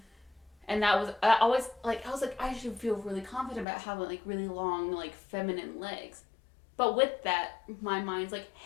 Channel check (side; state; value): right; drops out; at 3.7 s